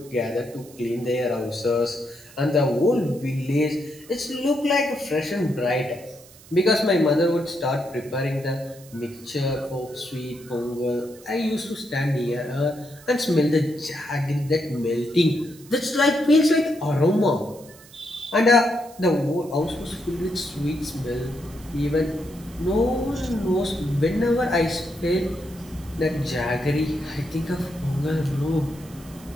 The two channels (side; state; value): right; noise; hiss, 22 dB below the sound